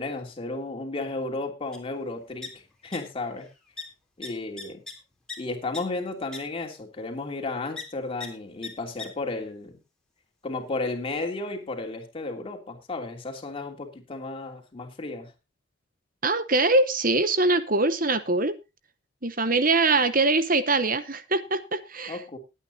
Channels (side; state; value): both; normal; correlation 0.07